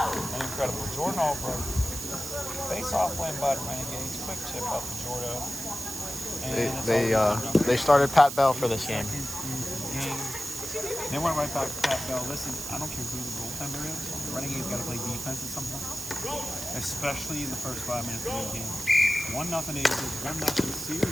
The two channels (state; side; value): noise; right; hiss, 7 dB below the sound